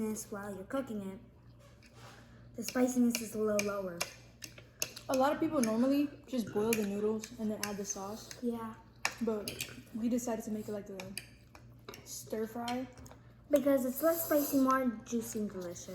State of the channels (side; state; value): both; identical; correlation 1.00